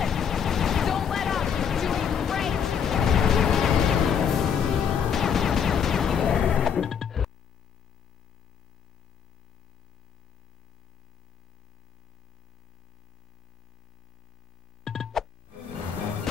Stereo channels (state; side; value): quieter; right; 7.5 dB